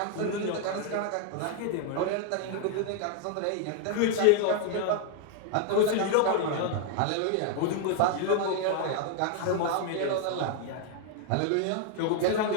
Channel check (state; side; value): different; both; correlation 0.00